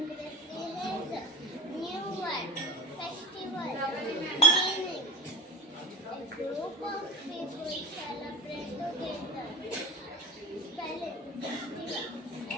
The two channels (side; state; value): both; normal; correlation 0.38